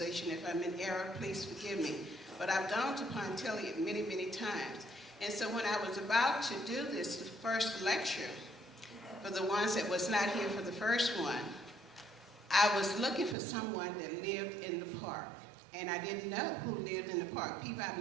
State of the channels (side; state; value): left; drops out; at 13.4 s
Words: If I'm in error, please forgive me. But I've gone to Pontilli many, many times. And so when I was about to do this, the first lecture, for the ones that was not here for the first one, I was looking for someone that lived in the park. And I didn't know who lived in the park. People